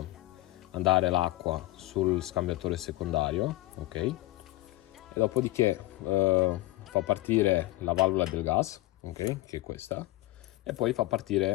andare l'acqua sul scambiatore secondario, ok? E dopodiché fa partire la valvola del gas, ok? Che è questa, e poi fa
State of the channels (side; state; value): right; quieter; 18.4 dB